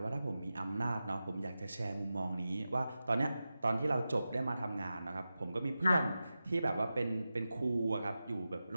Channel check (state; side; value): inverted; both; correlation -0.93